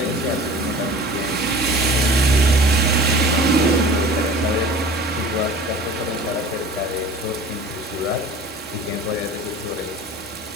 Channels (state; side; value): normal; both; correlation 0.42